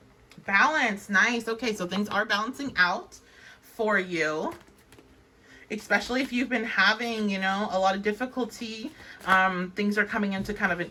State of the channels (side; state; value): both; identical; correlation 1.00